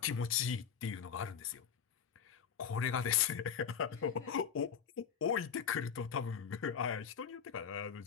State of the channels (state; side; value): quieter; right; 7.4 dB